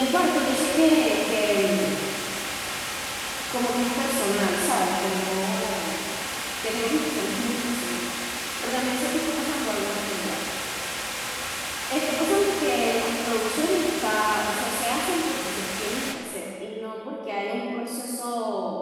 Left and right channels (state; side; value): identical; both; correlation 1.00